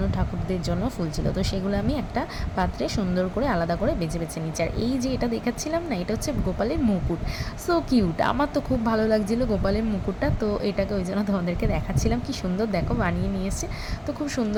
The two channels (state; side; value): identical; both; correlation 1.00